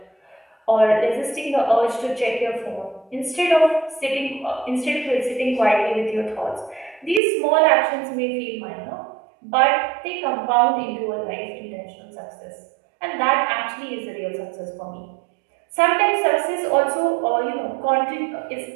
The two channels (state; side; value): drops out; left; at 7.2 s